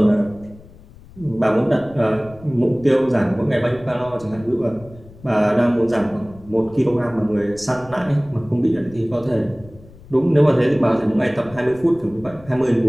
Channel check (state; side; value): noise; left; rumble, 21 dB below the sound